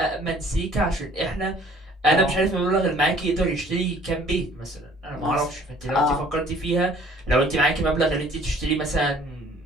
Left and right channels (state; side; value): normal; both; correlation 0.55